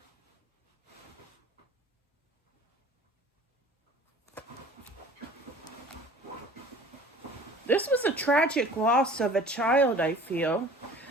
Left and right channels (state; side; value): normal; both; correlation 0.46